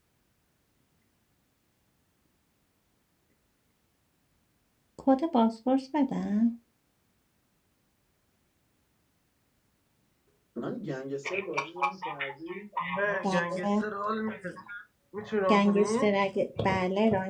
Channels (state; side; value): identical; both; correlation 1.00